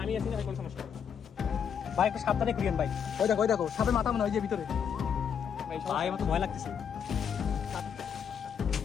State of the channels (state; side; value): quieter; right; 7.6 dB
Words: আমি আছি না, কোনো সমস্যা নেই। ভাই একটু সাবধানে করিয়েন ভাই। ওই দেখো সাপের মাথা মনে হয় যে ভিতরে। ভাই আমার তো ভয় লাগতেছে